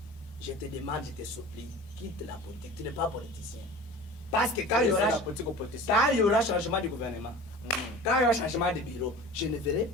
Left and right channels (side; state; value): both; normal; correlation 0.38